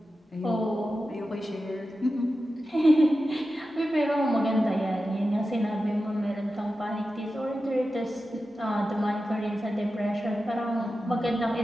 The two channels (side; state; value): both; normal; correlation 0.92